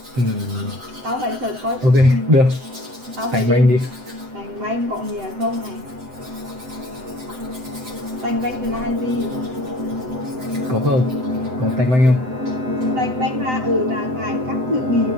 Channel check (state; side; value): late; left; 7.8 ms